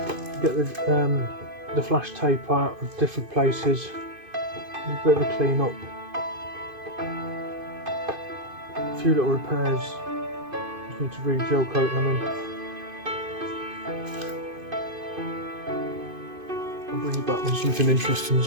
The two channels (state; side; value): late; left; 2.5 ms